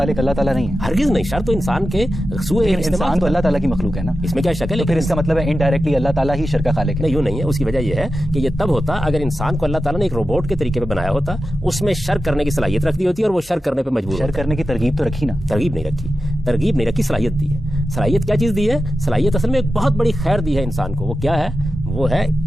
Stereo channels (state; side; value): normal; both; correlation 0.92